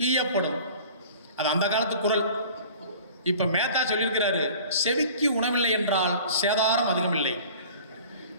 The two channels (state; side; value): inverted; both; correlation -0.45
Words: ஈயப்படும். அது அந்த காலத்து குரல். இப்போ மேத்தா சொல்லியிருக்கிறாரு, செவிக்கு உணவில்லை என்றால் சேதாரம் அதிகமில்லை,